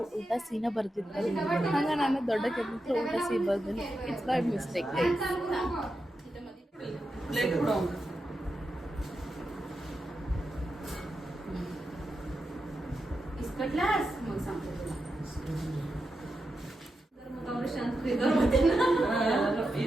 ಉಲ್ಟಾ ಸೀನ ಬರ್ತಿದ್ರು, ಹಂಗೆ ನಾನು ದೊಡ್ಡ ಕೆತ್ತಿದ್ರೆ ಉಲ್ಟಾ ಸೀ ಬರ್ತೀನಿ. It's by mistake guys. Plate उडवून इसकटलास मग सांगतो तुला तर मग ಅವ್ರು ಶಾಂತ ಇದ್ದಾರೆ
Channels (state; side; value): normal; both; correlation 0.88